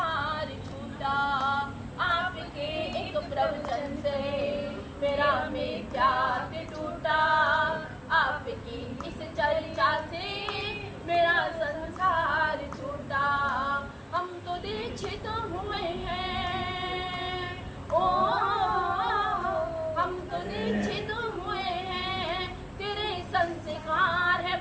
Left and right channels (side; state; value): both; identical; correlation 1.00